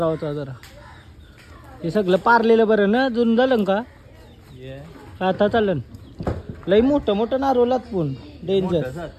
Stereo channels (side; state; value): both; identical; correlation 1.00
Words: जरा. हे सगळं पारलेलं बरं ना. जुन झालं का आता चालन. लई मोठं नारोलात पण डेंजर.